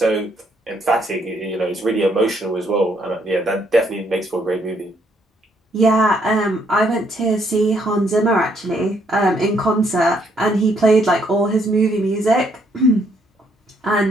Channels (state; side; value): normal; both; correlation 0.70